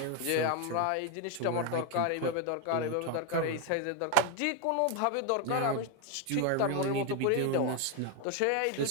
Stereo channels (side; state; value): both; different; correlation 0.01